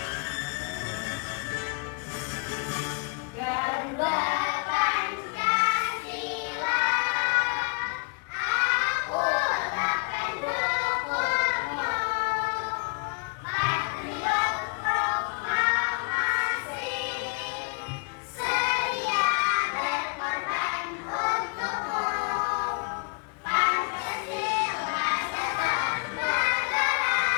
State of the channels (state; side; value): quieter; right; 34.6 dB